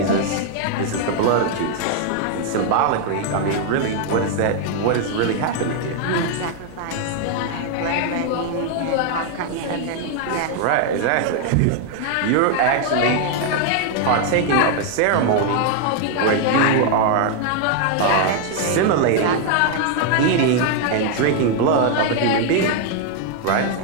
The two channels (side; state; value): both; different; correlation 0.00